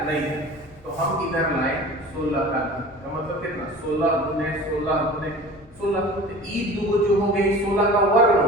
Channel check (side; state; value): both; normal; correlation 0.40